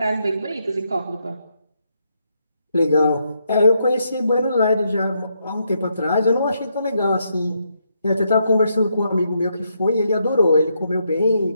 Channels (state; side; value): inverted; both; correlation -0.78